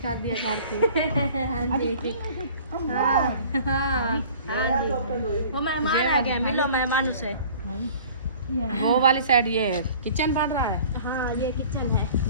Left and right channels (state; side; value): inverted; both; correlation -0.48